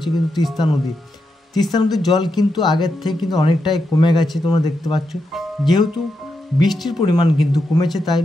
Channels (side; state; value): both; normal; correlation 0.85